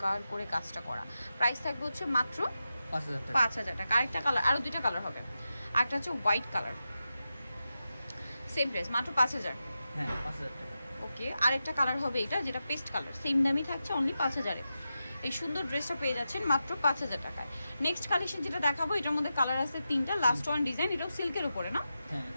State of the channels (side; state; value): both; inverted; correlation -0.91